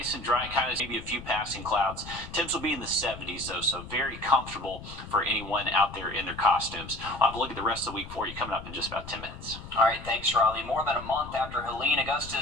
and dry, kind of maybe a few passing clouds. Temps will be in the 70s, though, so very comfortable for anyone out there in their costumes. I'll have a look at the rest of the week for you coming up in just about 10 minutes. All right, thanks, Riley. More than a month after Helene,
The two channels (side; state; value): left; noise; rumble, 13 dB below the sound